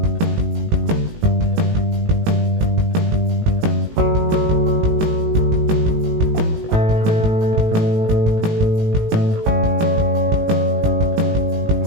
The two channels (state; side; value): late; left; 18 ms